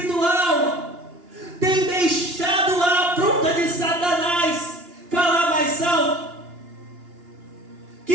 têm deixado a afronta de Satanás falar mais alto,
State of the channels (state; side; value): late; left; 2.9 ms